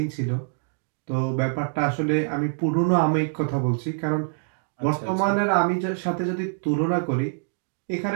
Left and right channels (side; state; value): left; silent; digital silence